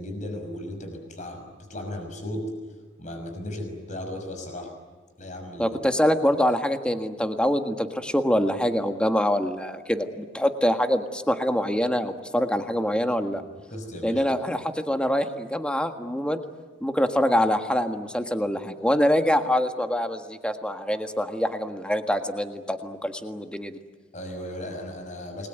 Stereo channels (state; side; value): normal; both; correlation 0.85